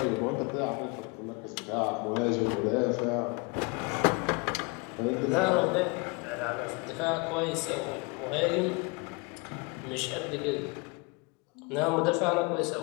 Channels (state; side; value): quieter; right; 30.0 dB